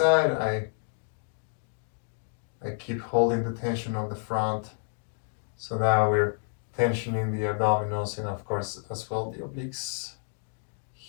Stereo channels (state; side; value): silent; right; digital silence